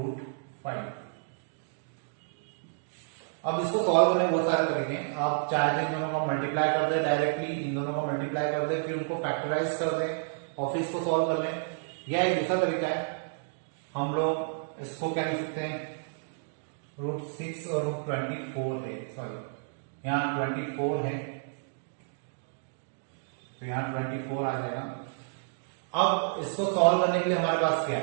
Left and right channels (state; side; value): silent; left; digital silence